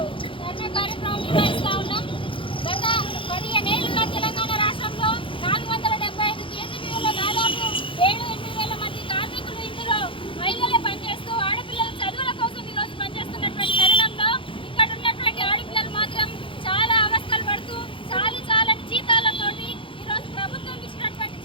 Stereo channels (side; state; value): right; late; 0.25 ms